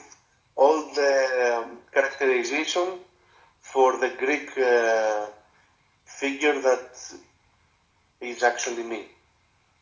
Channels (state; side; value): identical; both; correlation 1.00